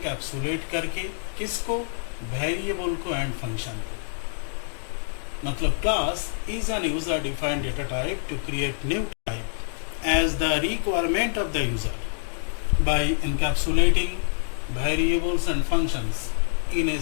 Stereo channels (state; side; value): silent; right; digital silence